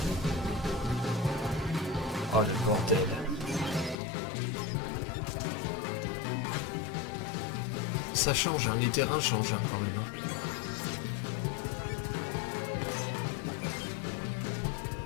Oh le bordel. Ça change, hein, les terrains changent hein, quand même.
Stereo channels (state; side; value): drops out; right; at 4.0 s